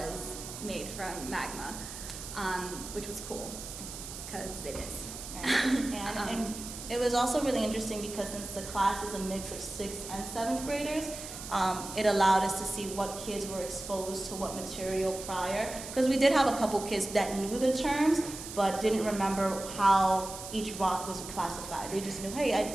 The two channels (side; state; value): right; noise; hiss, 10 dB below the sound